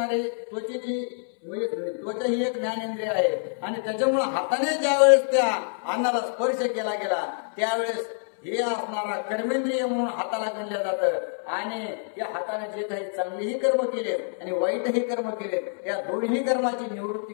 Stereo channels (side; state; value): right; silent; 61 dB below the other